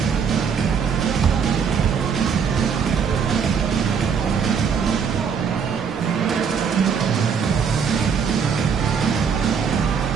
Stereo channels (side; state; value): left; quieter; 6.6 dB